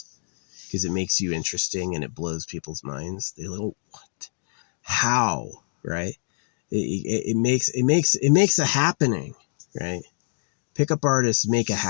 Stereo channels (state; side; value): silent; right; digital silence